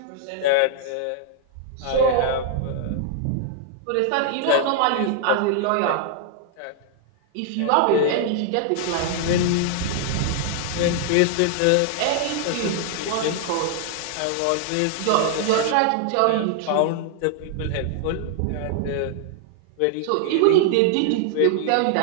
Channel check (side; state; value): both; different; correlation 0.00